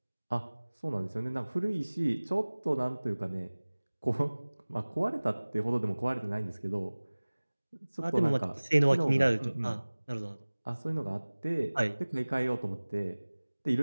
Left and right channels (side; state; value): both; inverted; correlation -1.00